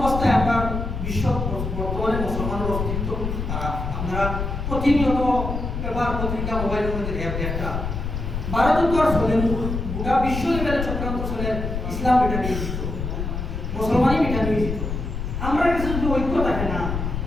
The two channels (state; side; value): noise; left; rumble, 4 dB below the sound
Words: আমরা বিশ্ব বর্তমানে মুসলমানের অস্তিত্ব তারা আপনারা প্রতিনিয়ত পেপার পত্রিকা মোবাইলের মধ্যে একটা ভারতের তো আর চলেন গোটা বিশ্ব লেভেলে চক্রান্ত চলে ইসলাম এটা নিয়ে দিত মুসলমানই এটা নিয়ে দিত আমরা কাছে যদি ঐক্য থাকে না